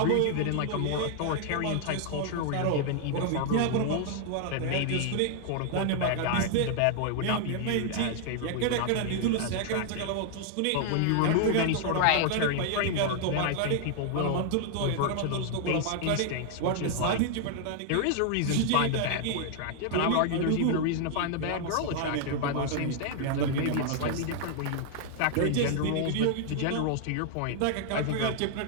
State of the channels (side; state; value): both; different; correlation 0.00